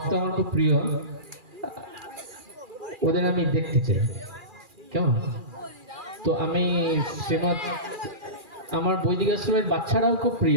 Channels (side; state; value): left; late; 2.4 ms